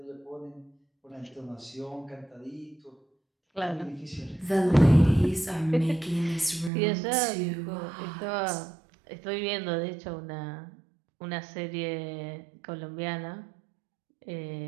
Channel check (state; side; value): drops out; left; at 6.7 s